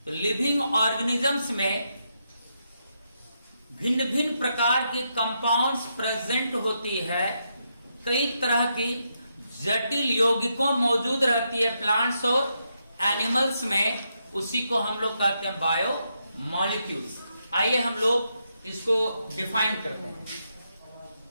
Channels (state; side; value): inverted; both; correlation -0.81